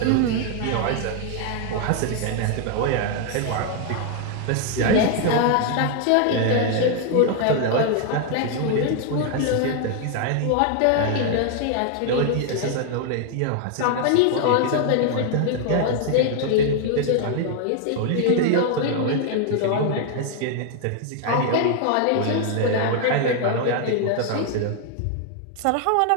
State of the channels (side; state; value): both; different; correlation 0.00